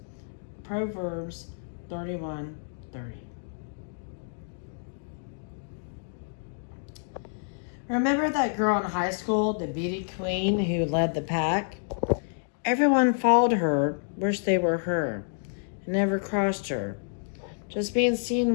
Proverbs 31:30. Remember that girl in high school, the beauty queen who led the pack? Everyone followed her, wished they were her, and never crossed her. Just being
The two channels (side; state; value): right; silent; digital silence